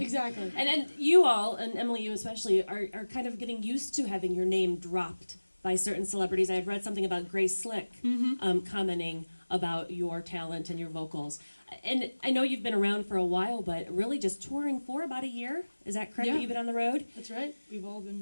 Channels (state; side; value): inverted; both; correlation -1.00